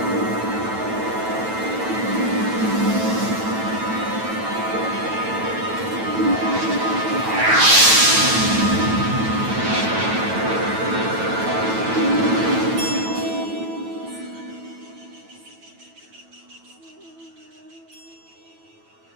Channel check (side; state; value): left; late; 9.1 ms